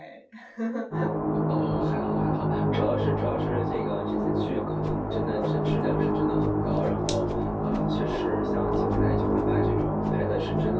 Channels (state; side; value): identical; both; correlation 1.00